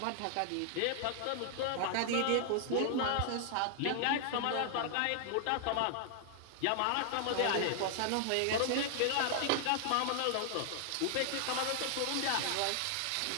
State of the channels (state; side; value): different; both; correlation 0.00